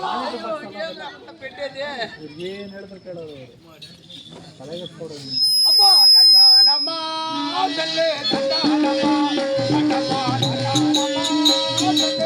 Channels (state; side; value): identical; both; correlation 1.00